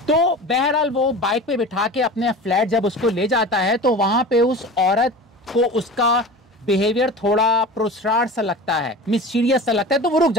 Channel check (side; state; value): both; normal; correlation 0.34